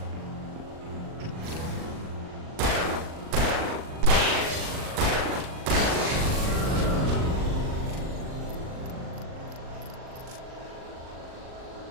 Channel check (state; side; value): late; left; 39 ms